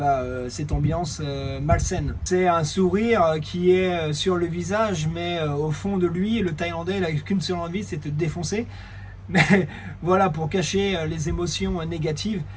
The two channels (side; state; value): both; identical; correlation 1.00